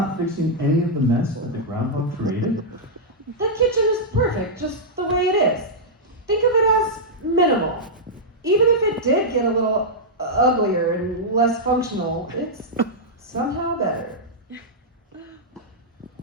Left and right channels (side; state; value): both; normal; correlation -0.08